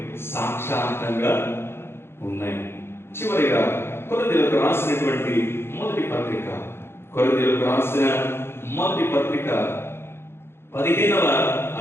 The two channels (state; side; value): late; right; 0.12 ms